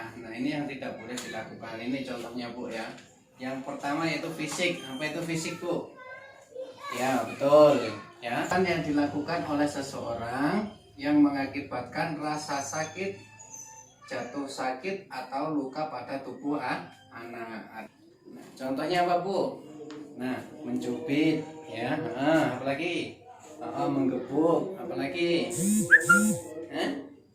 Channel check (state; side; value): identical; both; correlation 1.00